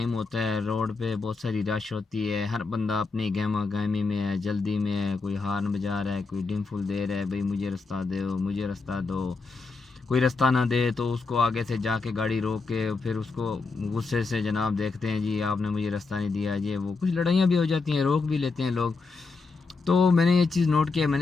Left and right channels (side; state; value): right; quieter; 4.1 dB